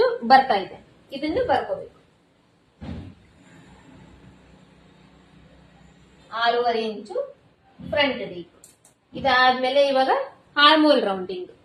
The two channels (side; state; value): both; identical; correlation 1.00